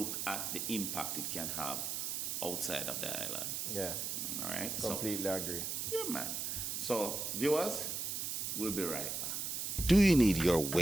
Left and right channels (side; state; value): right; noise; hiss, 2 dB below the sound